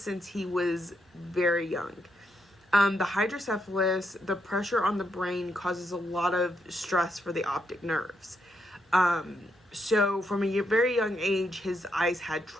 since he was very young. The hydrocephalus, the pressure on the brain causes a lot of stress for the optic nerves. So from a very young age, his eyes had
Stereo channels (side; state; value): both; normal; correlation 0.79